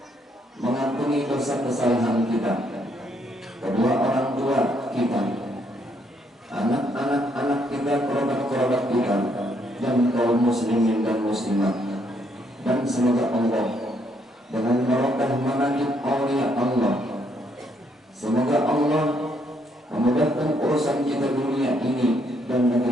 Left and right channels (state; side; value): normal; both; correlation 0.72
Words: mengampuni dosa kesalahan kita, kedua orang tua kita, anak-anak kita, kerabat-kerabat kita, dan kaum muslimin dan muslimat. Dan semoga Allah dengan barokah manakib aulia Allah, semoga Allah memudahkan urusan kita dunia ini dan